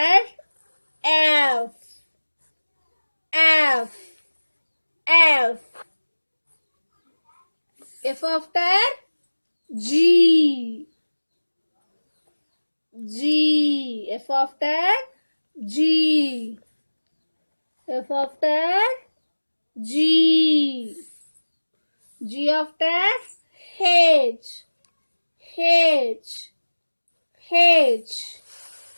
F. F. F. F after G. G. F after G. F after G. G after H. H. H.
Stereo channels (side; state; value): both; inverted; correlation -1.00